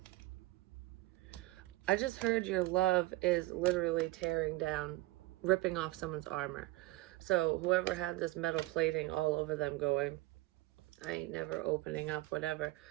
I just heard your love is literally tearing down, ripping off someone's armor. So whoever had this metal plating all over them going, I ain't never opening up, whatever.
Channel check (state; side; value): quieter; left; 19.4 dB